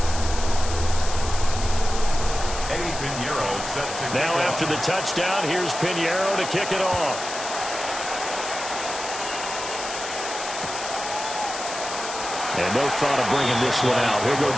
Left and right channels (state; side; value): noise; left; hiss, 8 dB below the sound